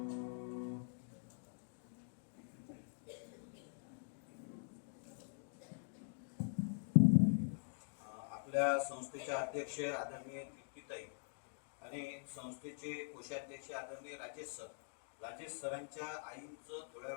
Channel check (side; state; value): right; silent; digital silence